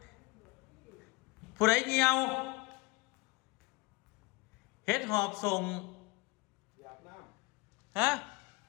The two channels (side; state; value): right; quieter; 23.6 dB